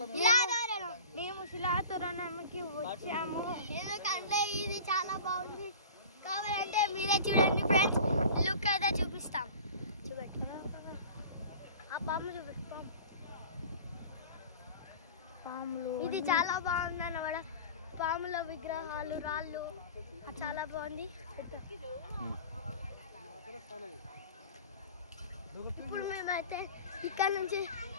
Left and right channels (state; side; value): inverted; both; correlation -0.39